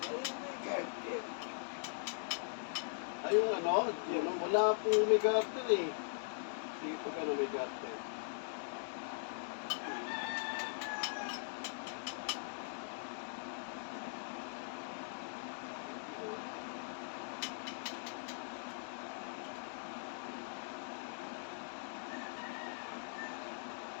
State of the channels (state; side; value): silent; right; digital silence